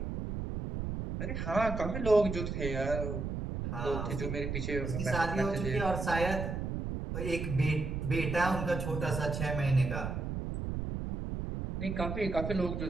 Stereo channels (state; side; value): noise; right; rumble, 3 dB below the sound